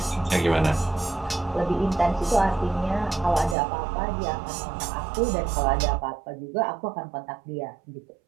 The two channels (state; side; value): drops out; left; at 3.6 s